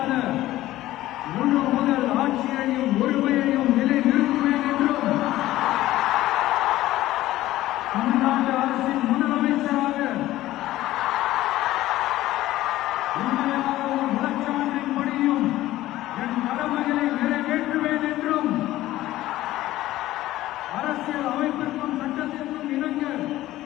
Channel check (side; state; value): right; quieter; 15.5 dB